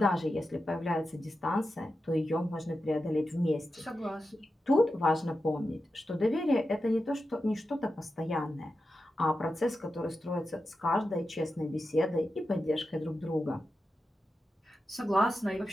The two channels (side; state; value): both; normal; correlation 0.91